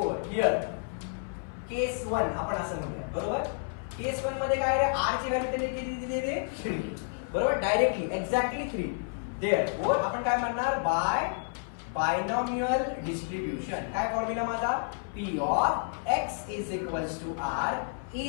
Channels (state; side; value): silent; right; 58 dB below the other